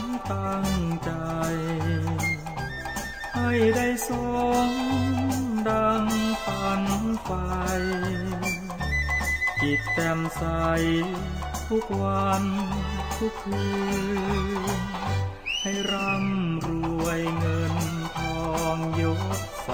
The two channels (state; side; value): identical; both; correlation 1.00